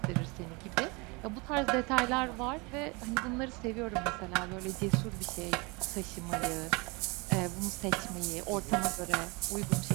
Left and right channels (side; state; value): left; quieter; 27.9 dB